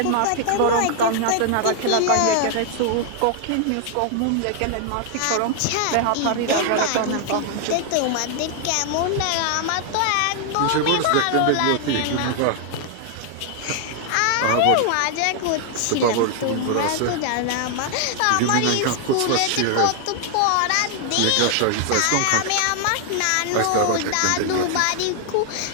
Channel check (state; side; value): different; both; correlation 0.00